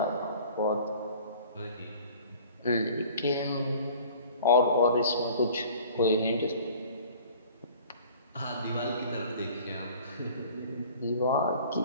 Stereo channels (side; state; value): both; inverted; correlation -0.48